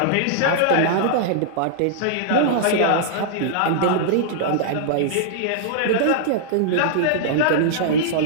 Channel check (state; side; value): different; both; correlation -0.01